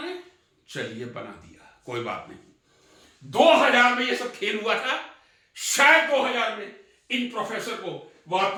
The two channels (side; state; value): both; identical; correlation 1.00